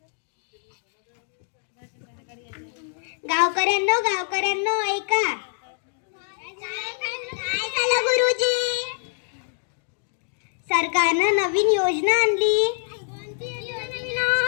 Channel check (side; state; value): right; silent; digital silence